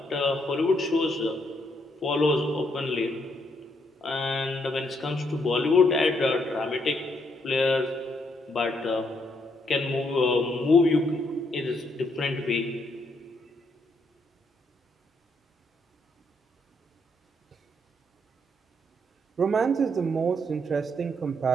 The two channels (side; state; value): both; normal; correlation 0.74